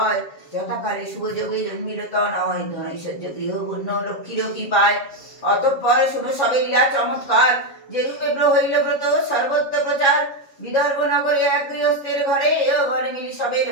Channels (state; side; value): late; right; 7.2 ms